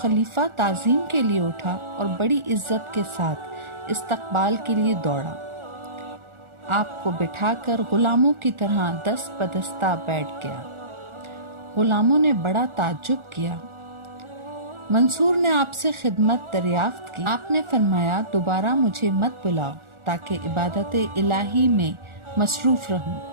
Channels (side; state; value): left; late; 1.4 ms